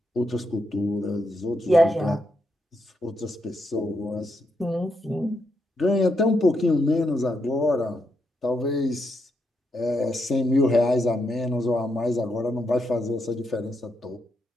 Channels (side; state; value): both; normal; correlation 0.81